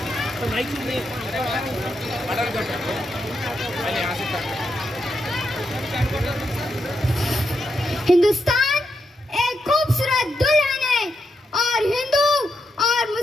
तो माइक शुरू नहीं पहले यहाँ से हिंदुस्तान एक खूबसूरत दुल्हन है और हिंदू और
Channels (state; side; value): normal; both; correlation 0.83